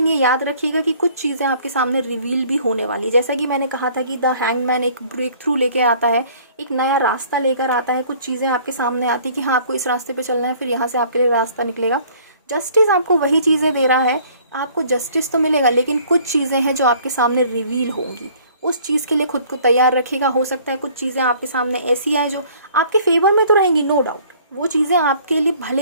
ये याद रखिएगा कि कुछ चीज़ें आपके सामने रिवील भी होने वाली, जैसा कि मैंने कहा था कि द हैंगमैन एक ब्रेक थ्रू लेके आता है, एक नया रास्ता लेकर आता है। कुछ चीज़ें आपके सामने आती कि हाँ आपको इस रास्ते पे चलना है, फिर यहाँ से आपके लिए रास्ता निकलेगा। जस्टिस आपको वही चीज़ें दे रहा है, आपको जस्टिस तो मिलेगा, लेकिन कुछ चीज़ें हैं जो आपके सामने रिवील होंगी। उस चीज़ के लिए खुद को तैयार रखिएगा। हो सकता है कुछ चीज़ें आपके सामने ऐसी आए जो आपके फेवर में तो रहेंगी, नो डाउट, वो चीज़ें आपके लिए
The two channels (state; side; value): inverted; both; correlation -0.55